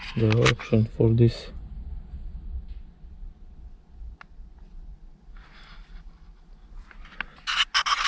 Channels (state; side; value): identical; both; correlation 1.00